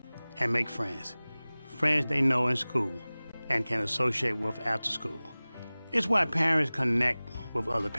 and make friends. Friends they know in school and can associate with after school. It's why parents connect with other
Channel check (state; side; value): inverted; both; correlation -0.99